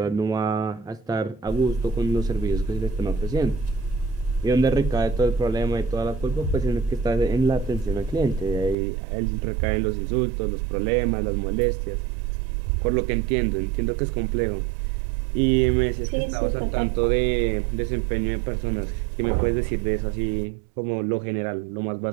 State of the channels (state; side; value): drops out; left; at 8.8 s